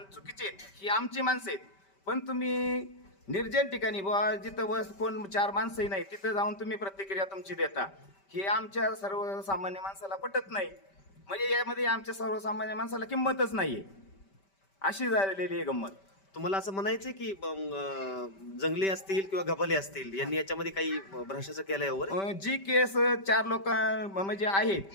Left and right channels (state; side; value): late; right; 5.1 ms